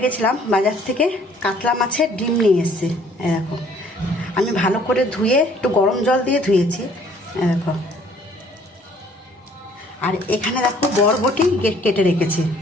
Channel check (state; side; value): normal; both; correlation 0.58